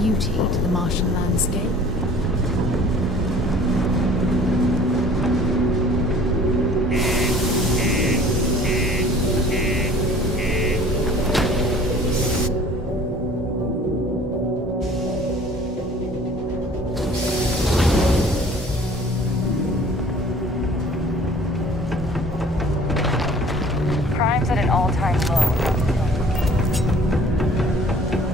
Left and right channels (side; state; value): both; normal; correlation 0.50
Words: to the Martian landscape. Crime's at an all-time low.